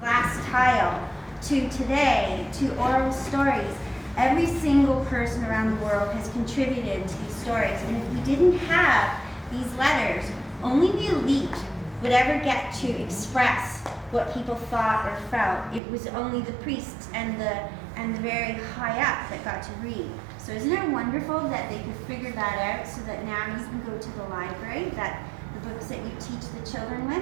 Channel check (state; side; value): drops out; left; at 15.8 s